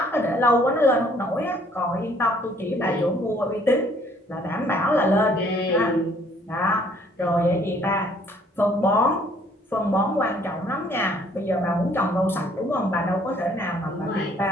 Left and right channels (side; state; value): both; normal; correlation 0.61